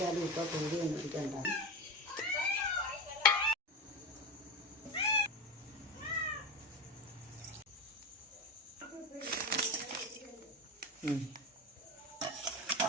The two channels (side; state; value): both; normal; correlation 0.20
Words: ഇപ്പൊ കൂടി മേടിക്കണ്ട.